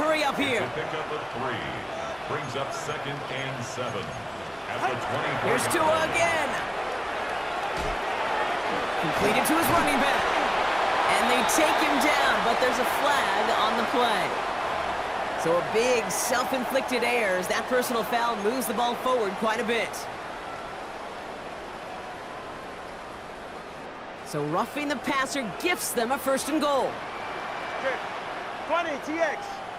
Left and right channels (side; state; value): both; identical; correlation 1.00